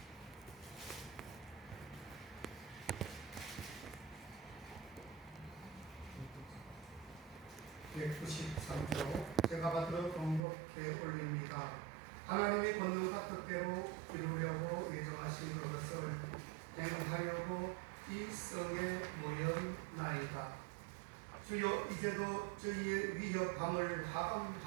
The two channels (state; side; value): drops out; left; at 10.4 s